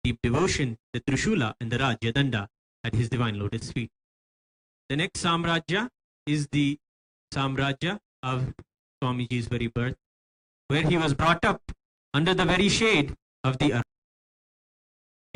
deep devotion the Trishula and the Rajyadanda at his divine lotus feet. The next Samrajya is the Samrajya of Swamiji's very birth, where he was brought up under the very shade of the earth.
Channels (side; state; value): both; identical; correlation 1.00